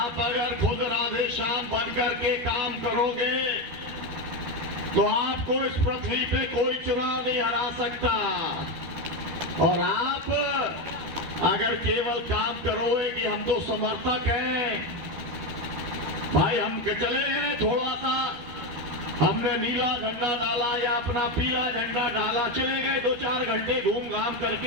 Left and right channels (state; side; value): late; left; 12 ms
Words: अगर खुद राधे श्याम बनकर के काम करोगे तो आपको इस पृथ्वी पे कोई चुनाव नहीं हरा सकता। और आप अगर केवल काम करोगे कि हम तो समर्थक हैं, भाई हम चले गए, थोड़ा सा हमने नीला झंडा डाला या अपना पीला झंडा डाला, चले गए, 2-4 घंटे घूम घाम